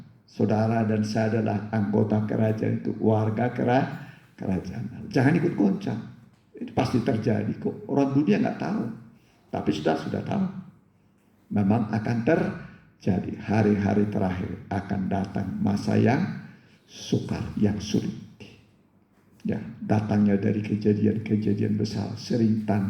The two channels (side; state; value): both; identical; correlation 1.00